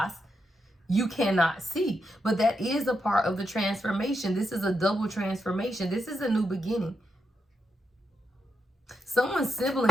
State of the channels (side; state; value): both; normal; correlation 0.84